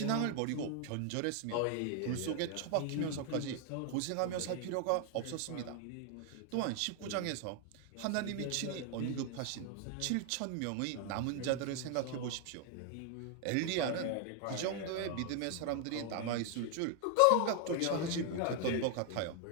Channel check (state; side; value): different; both; correlation 0.00